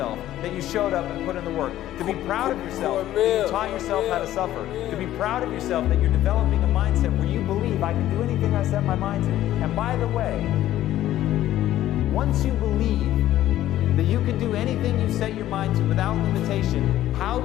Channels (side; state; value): right; quieter; 13.5 dB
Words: that you showed up and put in the work. To be proud of yourself that you taught yourself how to suffer. To be proud of yourself that you're developing a mindset where you believe I can do anything I set my mind to. And by the way, once you believe that you can do anything you set your mind to without limitation, how